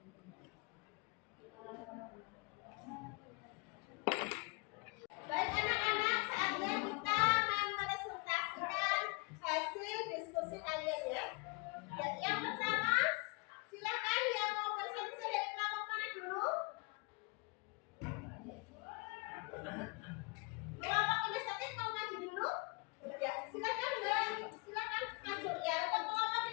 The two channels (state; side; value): quieter; right; 29.4 dB